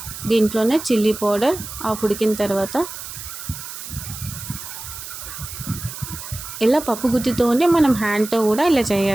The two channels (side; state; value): right; noise; hiss, 10 dB below the sound